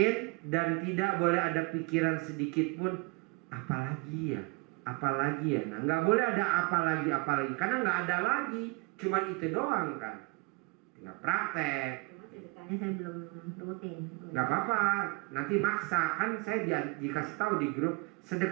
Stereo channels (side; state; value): left; quieter; 27.8 dB